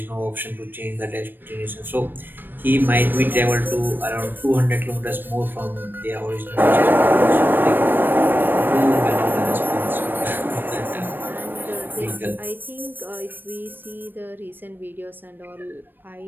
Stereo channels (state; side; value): late; left; 0.094 ms